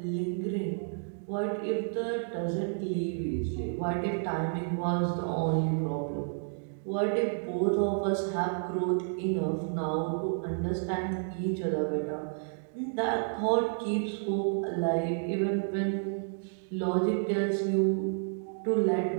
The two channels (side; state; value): left; silent; digital silence